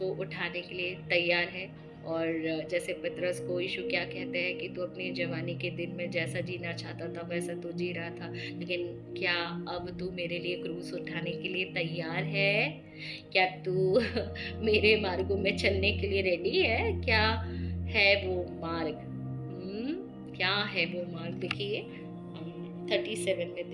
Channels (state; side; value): identical; both; correlation 1.00